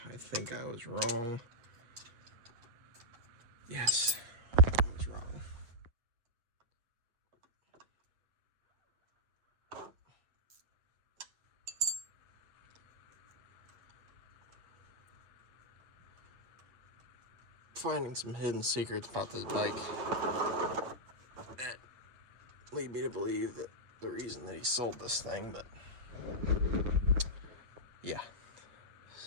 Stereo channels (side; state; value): left; late; 8.5 ms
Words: I think I was wrong. Yes, I was wrong. Finding some hidden secrets about this bike that lead me to believe that the reason that he sold this thing, but yeah.